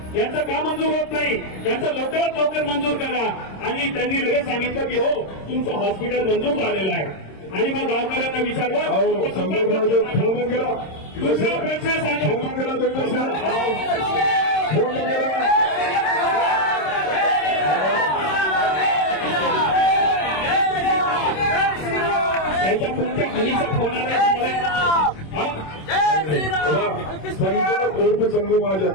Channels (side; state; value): right; late; 26 ms